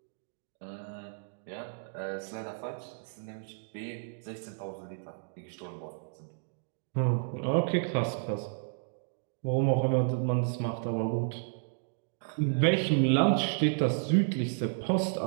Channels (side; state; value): left; silent; digital silence